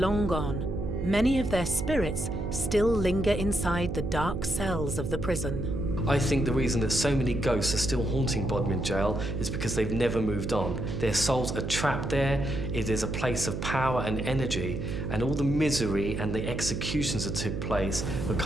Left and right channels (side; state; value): right; noise; hum, 4 dB below the sound